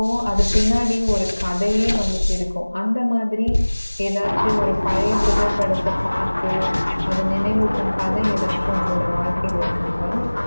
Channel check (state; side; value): inverted; both; correlation -1.00